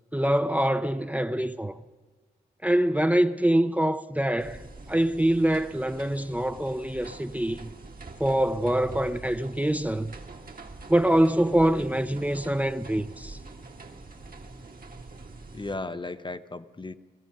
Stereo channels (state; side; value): normal; both; correlation 0.95